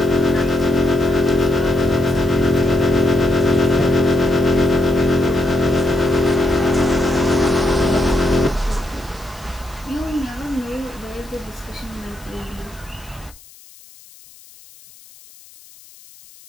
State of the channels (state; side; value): noise; left; hiss, 23 dB below the sound